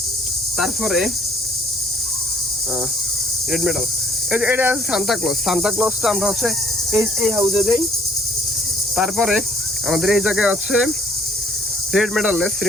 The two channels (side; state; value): both; normal; correlation 0.61